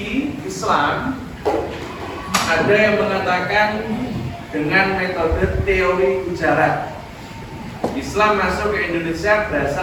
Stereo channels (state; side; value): identical; both; correlation 1.00